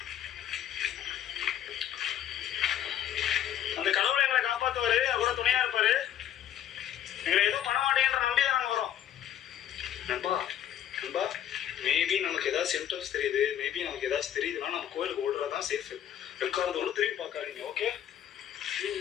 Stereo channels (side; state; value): right; quieter; 10.7 dB